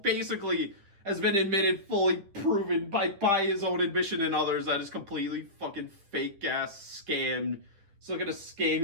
has been admitted, fully proven by his own admission and others that is completely fucking fake ass scam. It's looking to scam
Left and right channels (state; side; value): late; left; 10 ms